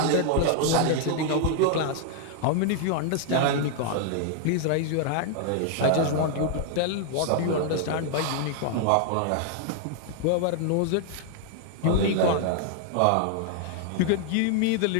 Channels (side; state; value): both; different; correlation 0.00